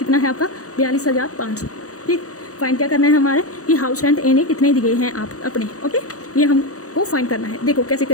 है आपका, 42,500। ठीक, फाइंड क्या करना है हमारे, कि हाउस रेंट ए ने कितने दिए हैं आप अपने। ओके, ये हमको फाइंड करना है। देखो कैसे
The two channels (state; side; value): late; right; 0.66 ms